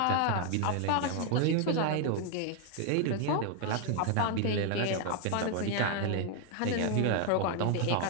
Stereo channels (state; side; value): different; both; correlation 0.01